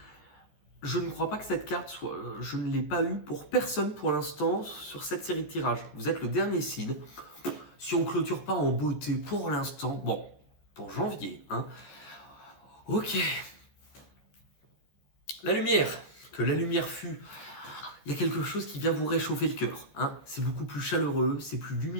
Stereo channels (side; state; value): right; late; 14 ms